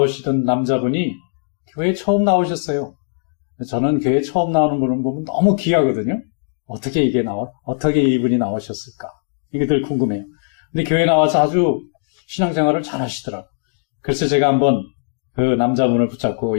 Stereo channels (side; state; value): right; silent; digital silence